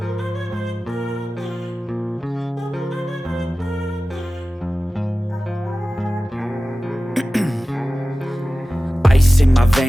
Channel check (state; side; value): normal; both; correlation 0.96